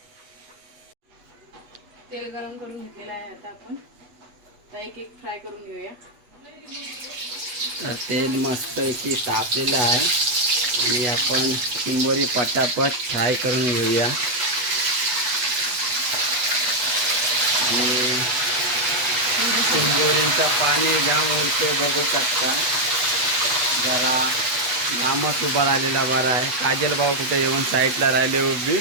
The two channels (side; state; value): left; late; 8.2 ms